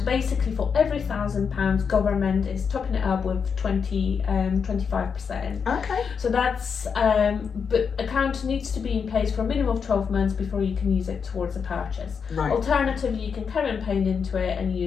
basically for every £1,000, government is topping it up with 25%. Okay. So that's but account needs to be in place for a minimum of 12 months before you can use it towards a purchase. Right. Alternatively, you can carry on paying into it and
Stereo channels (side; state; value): right; quieter; 6.3 dB